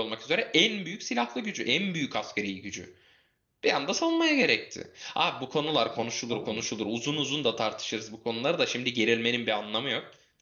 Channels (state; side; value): identical; both; correlation 1.00